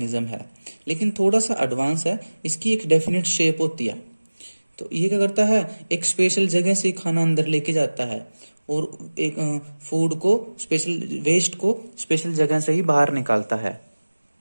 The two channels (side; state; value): both; inverted; correlation -1.00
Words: है, लेकिन थोड़ा सा एडवांस है, इसकी एक डेफिनेट शेप होती है। तो ये क्या करता है? एक स्पेशल जगह से खाना अंदर लेके जाता है, और एक फूड को, स्पेशल वेस्ट को स्पेशल जगह से ही बाहर निकालता है।